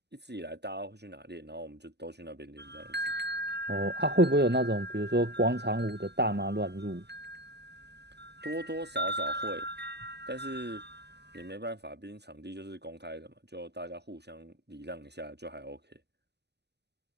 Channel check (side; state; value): left; late; 0.49 ms